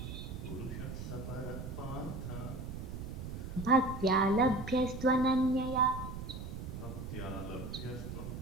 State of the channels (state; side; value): noise; right; rumble, 7 dB below the sound